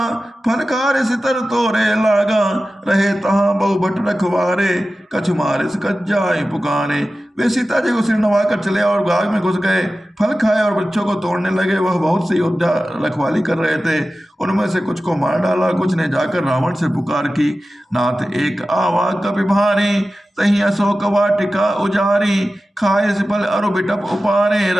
फनकार सितर तोरे लागा, रहे तहाँ बहु भट रखवारे, कछु मारे से कच जाए पुकारे। वे सीता जी को सिर नवा कर चले और बाग में घुस गए, फल खाए और बच्चों को तोड़ने लगे। वह बहुत से योद्धा रखवाली कर रहे थे, उनमें से कुछ को मार डाला, कुछ ने जाकर रावण से पुकार की, नाथ एक आवा कपि भारी, तही अशोक वाटिका उजारी, खाए से फल अरु बिटप उपारे,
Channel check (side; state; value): both; normal; correlation 0.95